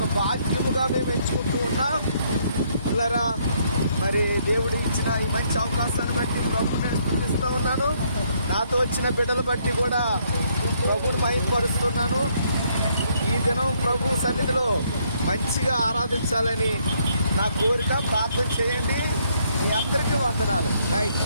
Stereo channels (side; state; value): both; inverted; correlation -0.69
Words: భాగ్యముగా మేము ఎంచుకుంటూ ఉన్నాం. పిల్లరా, మరి దేవుడు ఇచ్చిన ఈ మంచి అవకాశాన్ని బట్టి ప్రభుని నేను స్తుతిస్తూ ఉన్నాను. నాతో వచ్చిన బిడ్డలు బట్టి కూడా ప్రభుని మహిమపరుస్తున్నాను. ఈ దినం ప్రభు సన్నిధిలో మంచిగా ఆరాధించాలని నా కోరిక. ప్రార్థన చేయండి. మీ అందరికీ వందనాలు. Right